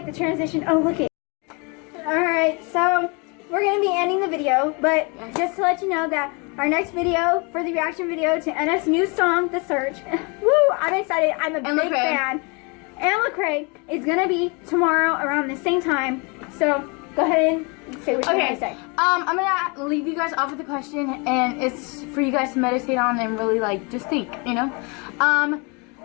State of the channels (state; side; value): quieter; right; 31.3 dB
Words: the transition. Oh, look it. All right, so we're gonna be ending the video, but just to let you know that our next video for the reaction video to NF's new song, "The Search." Woo! I'm excited. I'm a big fan. And Lecrae is gonna be tomorrow around the same time. So go ahead and say what you're gonna say. I'm gonna leave you guys off with a question, and it's for you guys to meditate on and really like just think,